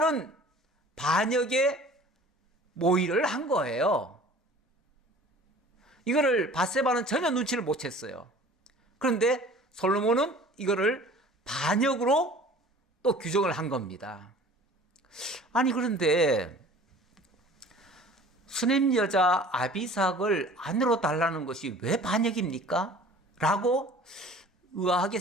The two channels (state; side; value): normal; both; correlation 0.46